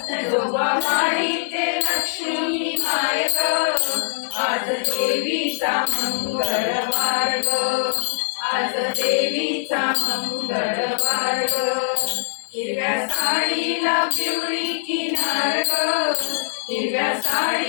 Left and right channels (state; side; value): silent; right; digital silence